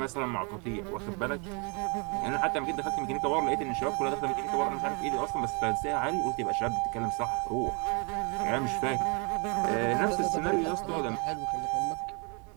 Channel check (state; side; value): quieter; left; 33.6 dB